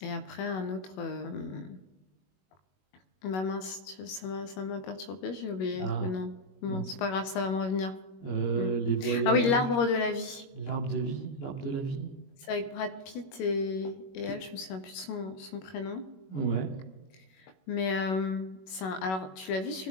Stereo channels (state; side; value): late; right; 21 ms